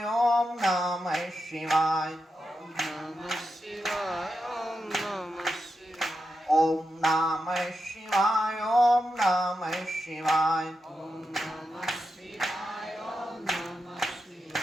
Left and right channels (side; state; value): both; normal; correlation 0.88